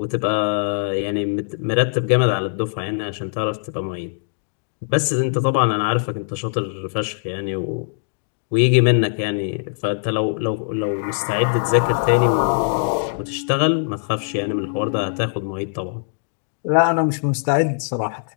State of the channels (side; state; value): right; silent; digital silence